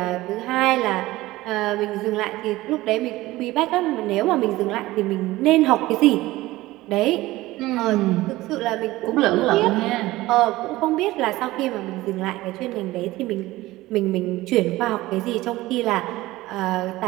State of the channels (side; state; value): left; quieter; 18.0 dB